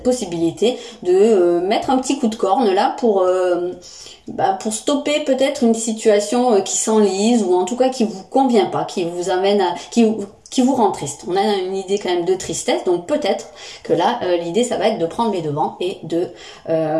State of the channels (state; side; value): identical; both; correlation 1.00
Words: possibilité de mettre un petit coup de corne là pour stopper peut-être une situation qui s'enlise ou en tout cas qui vous convient pas, qui vous amène à, qui vous rend triste. On a une idée quand même de tristesse, donc peut-être que là l'idée ça va être de prendre les devants et de